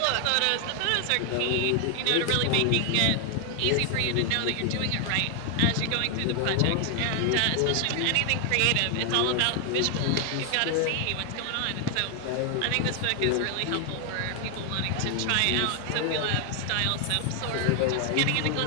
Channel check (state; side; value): different; both; correlation 0.00